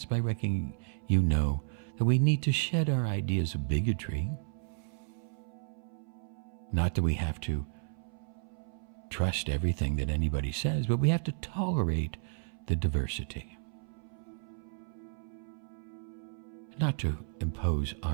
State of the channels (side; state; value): left; silent; 56 dB below the other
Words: by reckoning you know that we need to shed our ideas of bigotry. Not that we have to trust everything that anybody says, but we have to tolerate the diversity. Not to impose